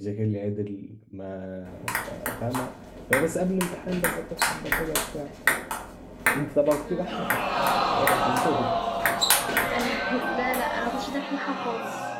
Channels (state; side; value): identical; both; correlation 1.00